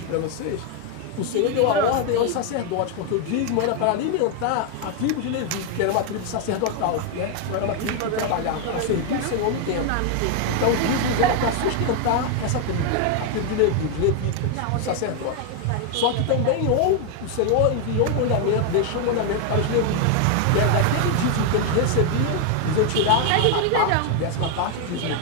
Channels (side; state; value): both; different; correlation 0.01